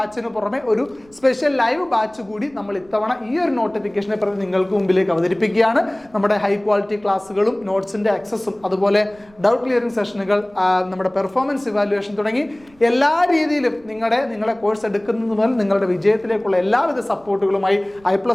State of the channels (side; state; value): right; noise; rumble, 29 dB below the sound